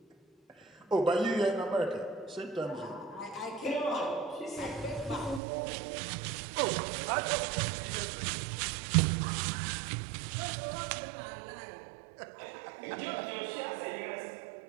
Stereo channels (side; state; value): left; drops out; at 5.4 s